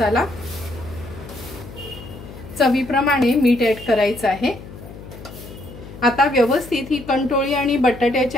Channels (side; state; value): left; noise; hum, 15 dB below the sound